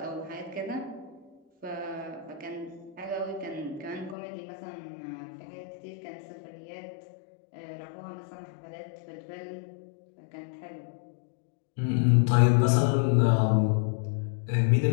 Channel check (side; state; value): right; drops out; at 4.2 s